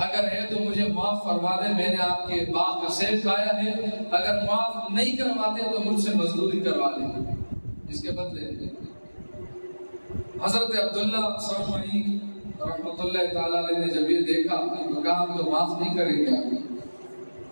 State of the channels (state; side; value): inverted; both; correlation -1.00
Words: اگر ہے تو مجھے معاف فرما دیں، میں نے آپ کے باغ کا سیب کھایا ہے، اگر معاف نہیں کرواتے تو مجھ سے مزدوری کروا لیں. اس کے بدلے حضرت عبداللہ سرمئی رحمۃ اللہ تعالی علیہ نے جب یہ دیکھا تو کہا ہم تو معاف نہیں کریں گے،